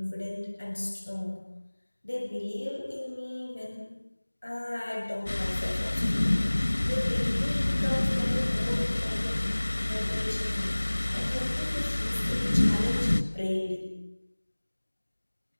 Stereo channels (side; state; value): both; inverted; correlation -1.00